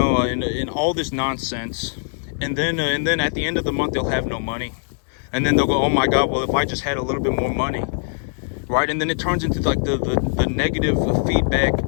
and all this nonsense. And then at the end of the month, they'll have no money. And then they'll go, oh, my God, well, if I just had a little bit more money. right? And then it turns into like the negative feedback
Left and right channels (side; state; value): right; silent; 65 dB below the other